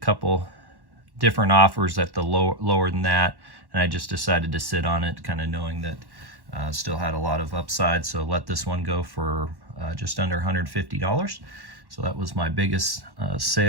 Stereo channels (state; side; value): late; left; 1.1 ms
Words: different offers at the lower than that, and I just decided to sit on it, kind of knowing that still had a lot of upside. So let this one go for just under $150. So that was my biggest